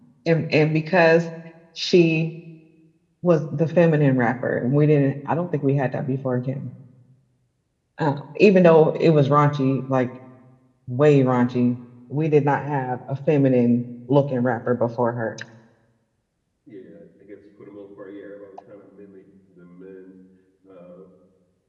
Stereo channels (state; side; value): identical; both; correlation 1.00